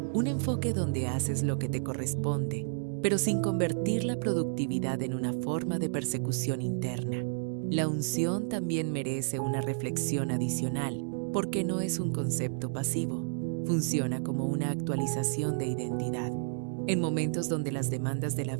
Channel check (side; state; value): left; silent; digital silence